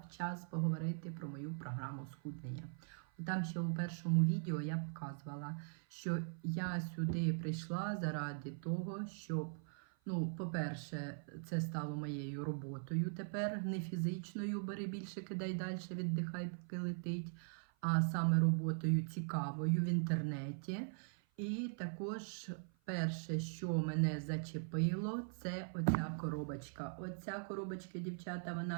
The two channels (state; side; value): silent; left; 50 dB below the other